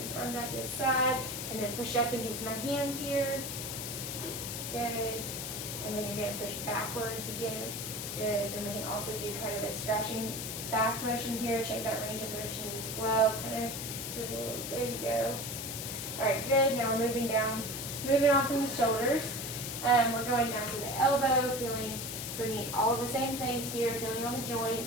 his arm out to his side, and then push up against my hand here. Good. And then you're going to push backwards against. Good. Then we can also do kind of a scratching back motion here. Check that range of motion as well. Kind of, so there you go. All right, good. Now we're moving on from the shoulders. We're going down to the elbow, feeling for all of the same things here, feeling on the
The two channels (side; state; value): left; noise; hiss, 5 dB below the sound